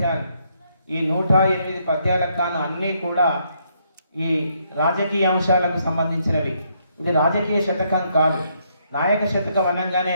ఈ 108 పద్యాలకు కాను అన్నీ కూడా ఈ రాజకీయ అంశాలకు సంబంధించినవి. ఇది రాజకీయ శతకం కాదు. నాయక శతకం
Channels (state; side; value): inverted; both; correlation -0.73